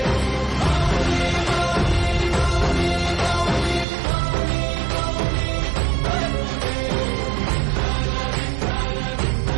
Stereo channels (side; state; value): left; drops out; at 3.9 s